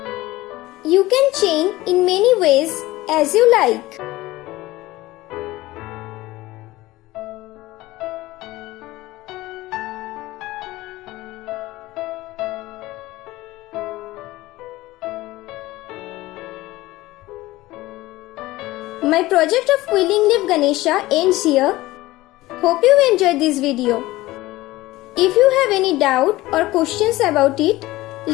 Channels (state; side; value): quieter; right; 18.3 dB